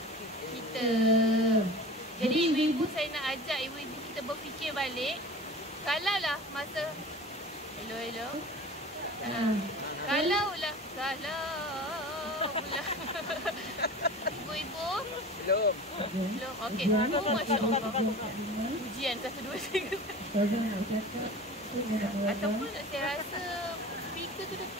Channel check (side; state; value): both; normal; correlation 0.37